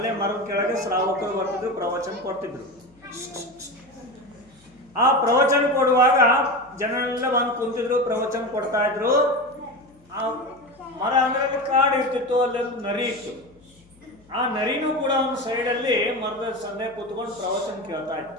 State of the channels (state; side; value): noise; left; hum, 30 dB below the sound